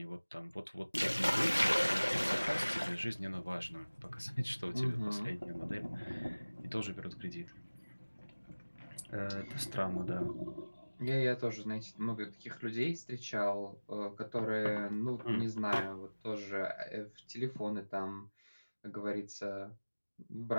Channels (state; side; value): inverted; both; correlation -1.00